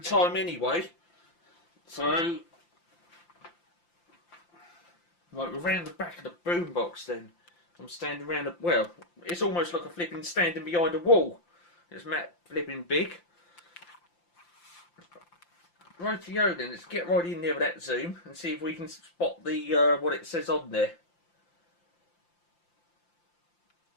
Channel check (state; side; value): late; right; 5.8 ms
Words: time anyway. So, right, we're around the back of the boombox then. I'm standing around the, well, it's almost like a flipping standing behind a wall. It's Matt flipping big. Rightio then, let's get right in there with that zoom and see if we can spot the what it says on there.